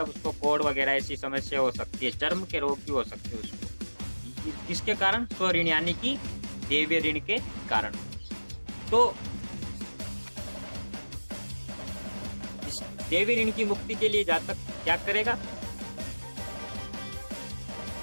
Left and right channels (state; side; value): inverted; both; correlation -1.00